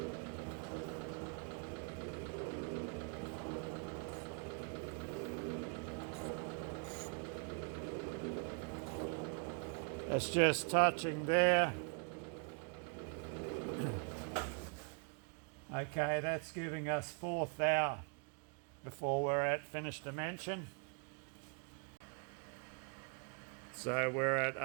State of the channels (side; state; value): left; quieter; 38.5 dB